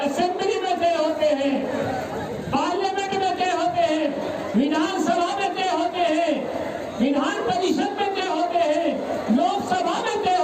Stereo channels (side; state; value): both; identical; correlation 1.00